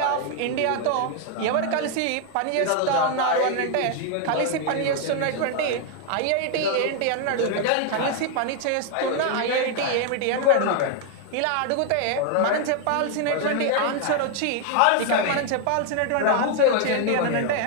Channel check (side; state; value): both; different; correlation 0.00